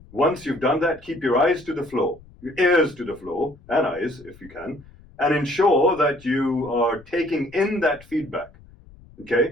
Once you've done that, keep your eyes to the floor, your ears to the floor, and eyes if you can, and ensure that you are taking in that feedback,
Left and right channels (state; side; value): noise; left; rumble, 24 dB below the sound